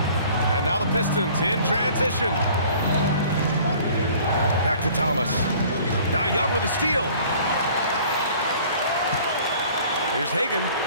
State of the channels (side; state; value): both; inverted; correlation -0.51